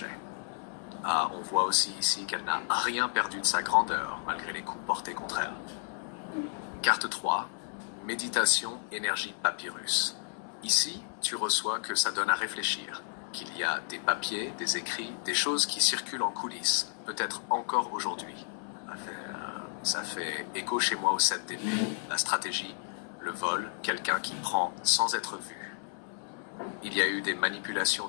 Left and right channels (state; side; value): silent; right; 56 dB below the other